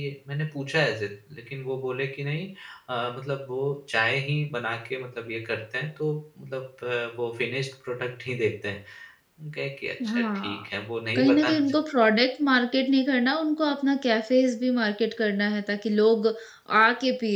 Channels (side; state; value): both; identical; correlation 1.00